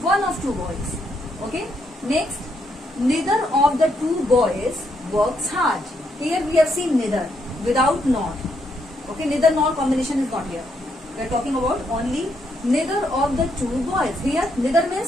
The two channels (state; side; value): normal; both; correlation 0.76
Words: one of two boys. Okay. Next, neither of the two boys works hard. Here we have seen neither without not. Okay, neither nor combination is not here. We are talking about only neither of the two boys. Here neither